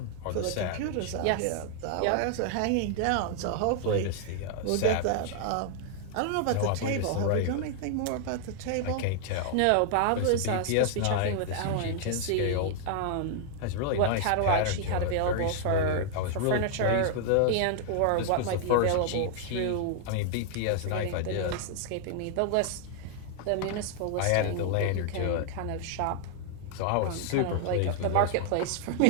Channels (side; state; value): both; different; correlation 0.00